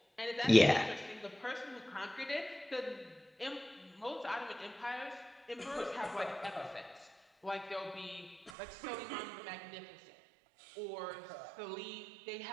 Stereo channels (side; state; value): left; drops out; at 8.5 s